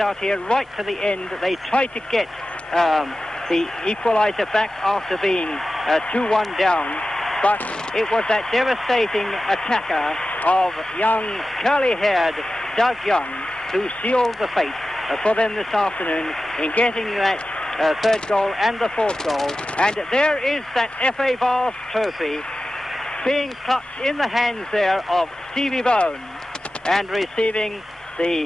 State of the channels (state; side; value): normal; both; correlation 0.94